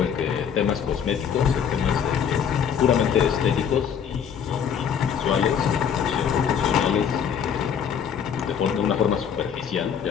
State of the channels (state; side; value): quieter; right; 7.9 dB